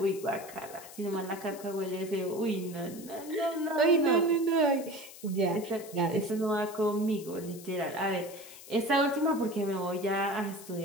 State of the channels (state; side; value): noise; left; hiss, 17 dB below the sound